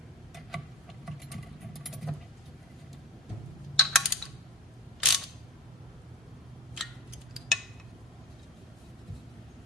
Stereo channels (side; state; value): both; normal; correlation 0.32